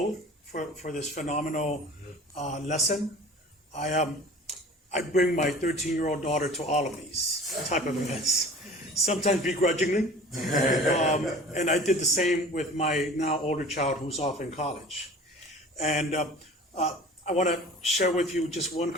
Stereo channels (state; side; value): normal; both; correlation 0.42